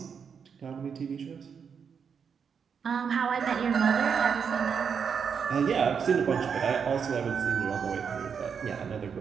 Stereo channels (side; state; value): left; quieter; 6.6 dB